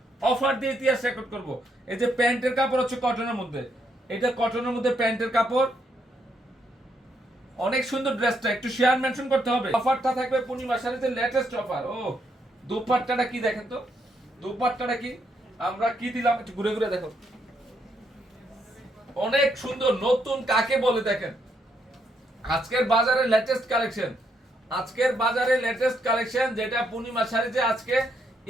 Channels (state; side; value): normal; both; correlation 0.76